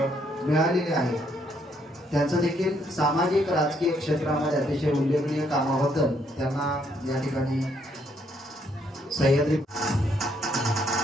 आहे। त्यांचं देखील सामाजिक राजकीय क्षेत्रामध्ये अतिशय उल्लेखनीय कामाबद्दल त्यांना या ठिकाणी सह्याद्री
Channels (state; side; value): normal; both; correlation 0.71